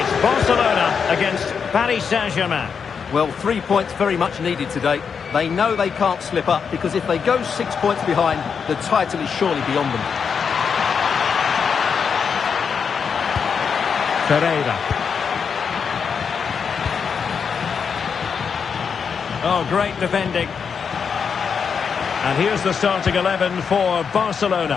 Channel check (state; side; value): quieter; right; 6.4 dB